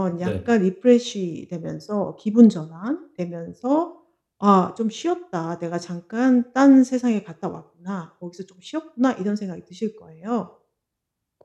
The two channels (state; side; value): identical; both; correlation 1.00